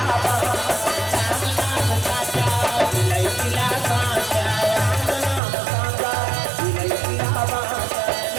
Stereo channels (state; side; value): drops out; left; at 5.4 s